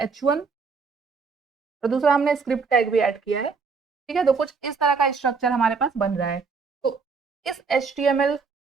H1, और दूसरा हमने स्क्रिप्ट टैग भी ऐड किया है। ठीक है, तो कुछ इस तरह का स्ट्रक्चर हमारे पास बन रहा है। तो इस HTML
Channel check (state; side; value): quieter; left; 5.0 dB